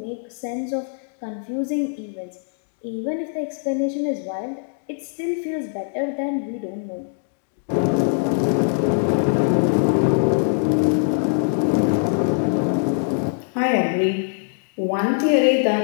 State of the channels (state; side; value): silent; right; digital silence